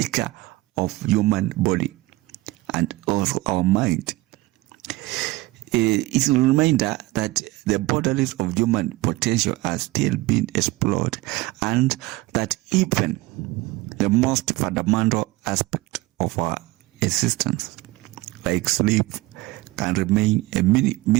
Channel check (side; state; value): left; quieter; 20.3 dB